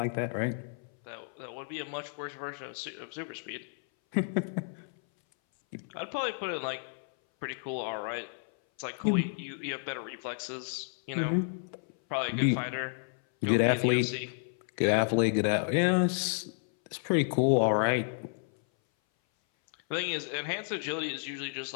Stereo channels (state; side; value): silent; right; 57 dB below the other